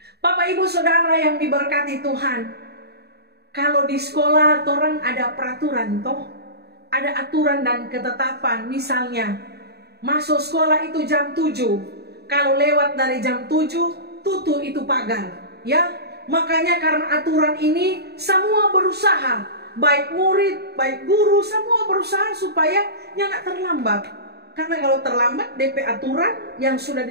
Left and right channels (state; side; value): late; left; 0.47 ms